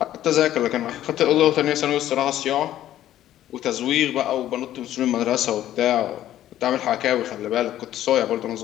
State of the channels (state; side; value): quieter; right; 12.6 dB